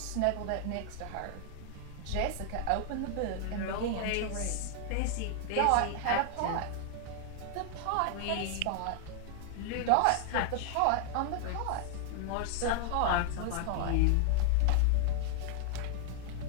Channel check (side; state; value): both; different; correlation 0.00